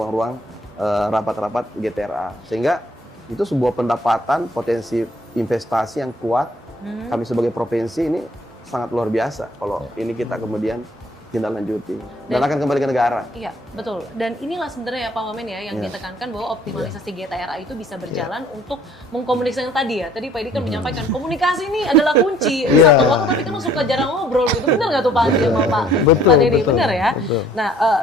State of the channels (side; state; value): both; normal; correlation 0.58